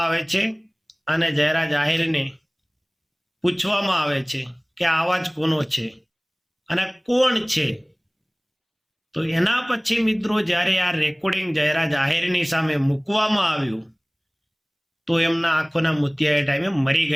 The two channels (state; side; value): identical; both; correlation 1.00